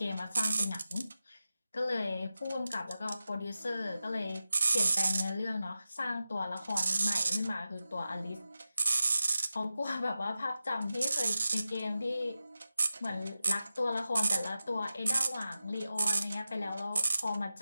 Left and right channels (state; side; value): inverted; both; correlation -0.92